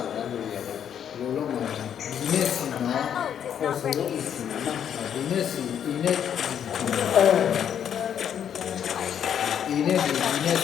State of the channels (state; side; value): quieter; right; 9.0 dB